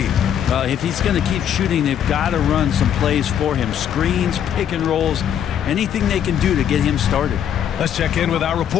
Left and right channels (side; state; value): right; quieter; 9.4 dB